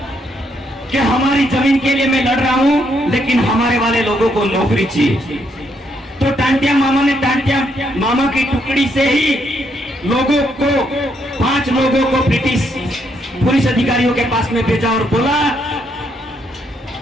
कि हमारी जमीन के लिए मैं लड़ रहा हूं, लेकिन हमारे वाले लोगों को नौकरी चाहिए। तो टांटिया मामा ने टांटिया मामा की टुकड़ी से ही लोगों को 5 लोगों को ब्रिटिश पुलिस अधिकारियों के पास में भेजा और बोला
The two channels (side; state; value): both; normal; correlation 0.75